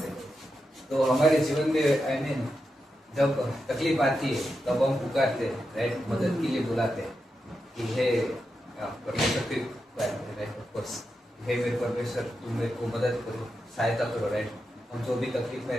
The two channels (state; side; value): normal; both; correlation 0.88